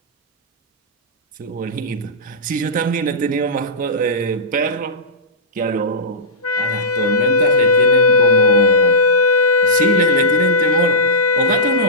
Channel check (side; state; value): both; normal; correlation -0.15